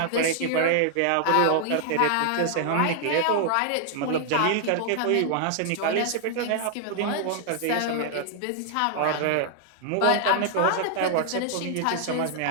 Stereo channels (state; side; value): different; both; correlation 0.00